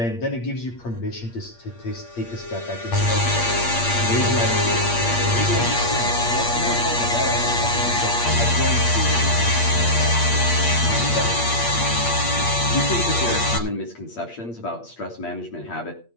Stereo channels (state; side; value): late; right; 8.5 ms